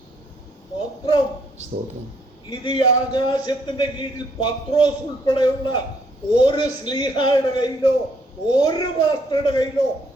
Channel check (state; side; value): normal; both; correlation 0.68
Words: സ്തോത്രം. ഇത് ഈ ആകാശത്തിന്റെ കീഴിൽ പത്രോസ് ഉൾപ്പെടെയുള്ള ഒരു സ്ലീഹായുടെ കയ്യിലോ ഒരു പാസ്റ്ററുടെ കയ്യിലോ